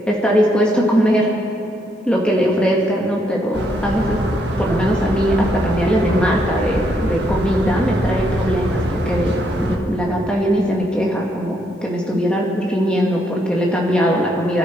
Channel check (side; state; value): both; normal; correlation 0.75